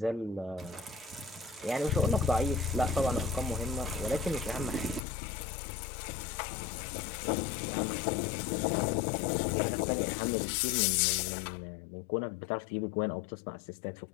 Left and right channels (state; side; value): drops out; right; at 5.0 s